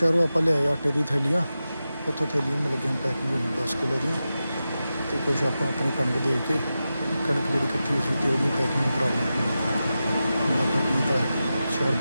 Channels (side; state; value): both; inverted; correlation -0.92